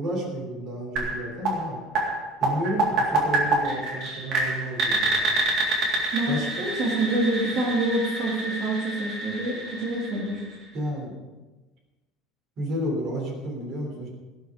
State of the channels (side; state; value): both; normal; correlation 0.45